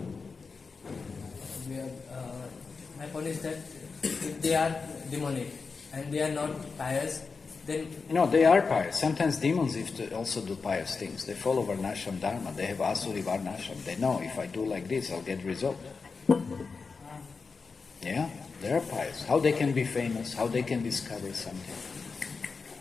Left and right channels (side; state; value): right; quieter; 4.7 dB